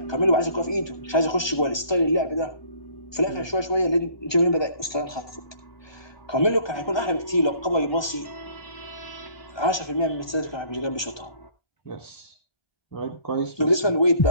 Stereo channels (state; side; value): late; right; 1.2 ms